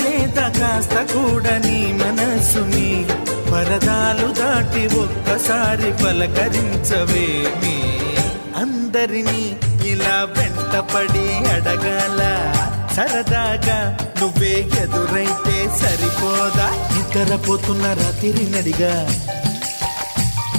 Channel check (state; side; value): inverted; both; correlation -1.00